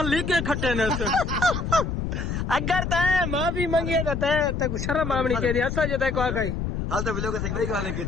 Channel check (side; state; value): left; noise; rumble, 3 dB below the sound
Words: लिखे खट्टे ने अगर तय माफी मांगी तो तय को शर्म आमनी के ऐसा जो तय को आ गई हाल तो ब्लॉग से गई गाने की